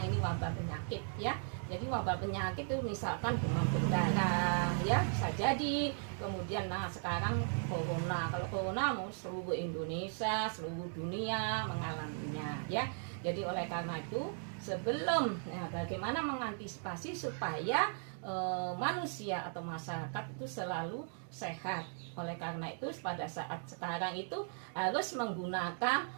ini wabah penyakit ya. Jadi wabah penyakit itu misalkan demam berdarah ya, bisa jadi. Kemudian nah sekarang corona. Kalau corona mau seluruh Indonesia, seluruh dunia mengalaminya ya. Jadi oleh karena itu sebelum bagaimana mengantisipasi supaya manusia atau masyarakat itu selalu sehat. Oleh karena itu pada saat sekarang itu harus menggunakan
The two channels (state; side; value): silent; left; 53 dB below the other